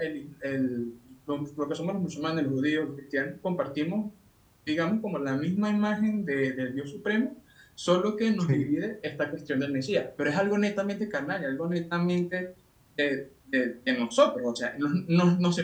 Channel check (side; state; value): both; identical; correlation 1.00